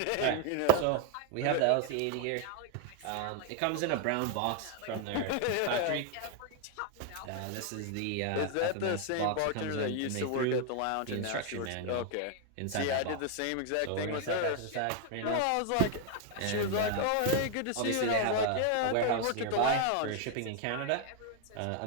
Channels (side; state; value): both; different; correlation 0.00